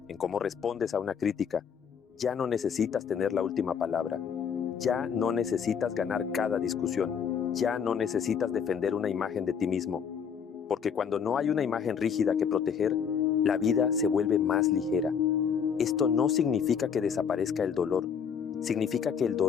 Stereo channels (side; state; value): right; quieter; 7.1 dB